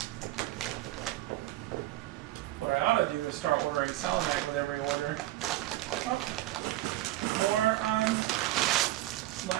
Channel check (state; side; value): quieter; left; 16.1 dB